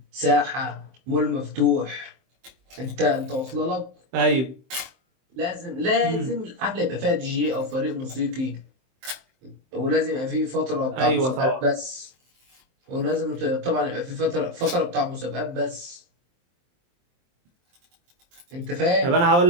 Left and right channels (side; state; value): left; late; 23 ms